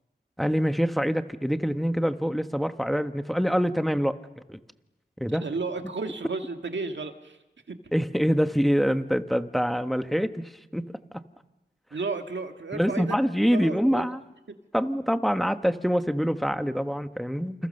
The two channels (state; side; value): normal; both; correlation 0.95